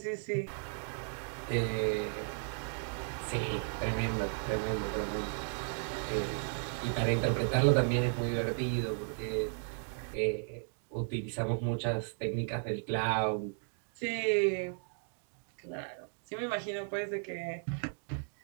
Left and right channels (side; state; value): left; silent; 54 dB below the other